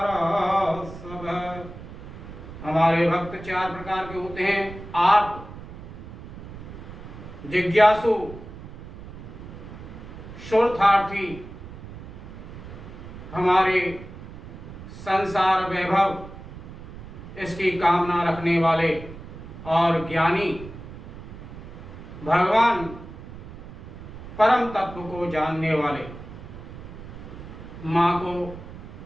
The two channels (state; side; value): noise; right; rumble, 13 dB below the sound